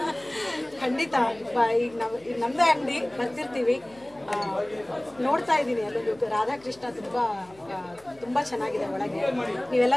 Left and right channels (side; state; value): left; noise; hum, 26 dB below the sound